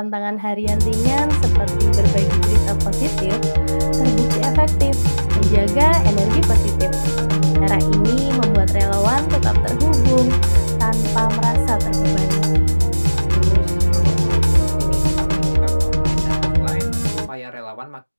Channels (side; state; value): both; inverted; correlation -1.00